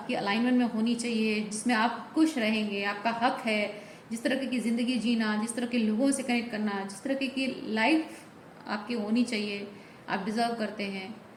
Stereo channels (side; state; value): both; identical; correlation 1.00